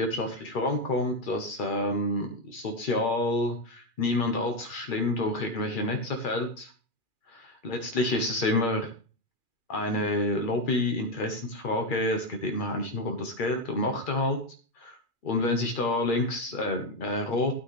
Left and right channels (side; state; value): right; late; 2.4 ms